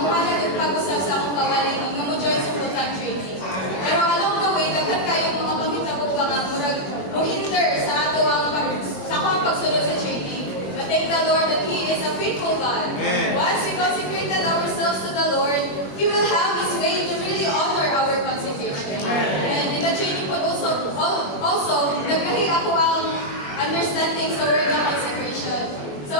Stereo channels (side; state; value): right; late; 21 ms